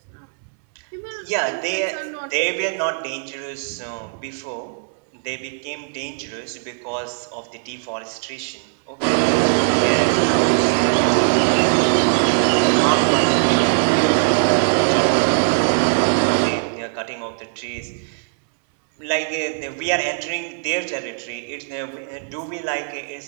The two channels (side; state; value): left; silent; digital silence